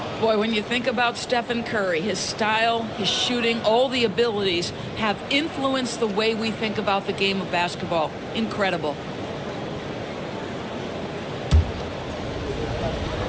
Boy, when you think about Stephen Curry, his style, his shooting, all the abilities have influenced the way we think about the game of basketball. Incredible.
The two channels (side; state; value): both; identical; correlation 1.00